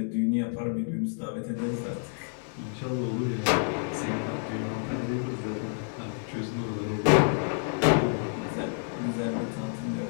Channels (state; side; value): silent; right; 59 dB below the other